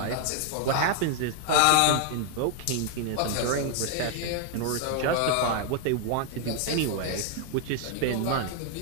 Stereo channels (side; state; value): both; different; correlation 0.00